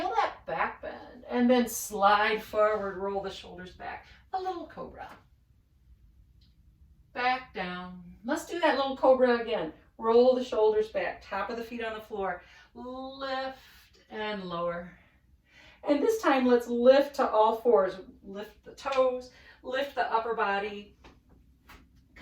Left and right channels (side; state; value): both; identical; correlation 1.00